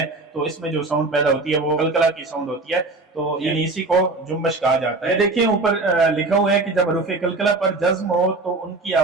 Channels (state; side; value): quieter; left; 3.4 dB